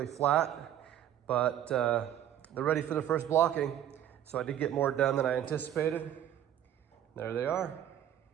flat, but they're ready for the first blocking. So I did get more done than I anticipated. There they are.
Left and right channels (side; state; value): left; quieter; 10.8 dB